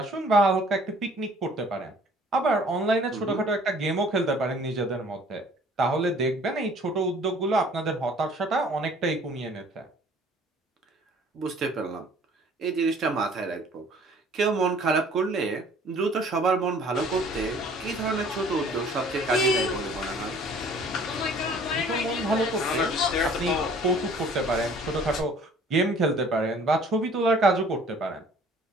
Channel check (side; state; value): both; normal; correlation 0.54